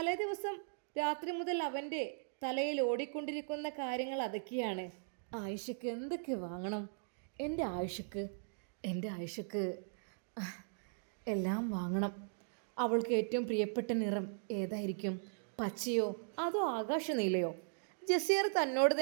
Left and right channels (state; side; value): silent; left; digital silence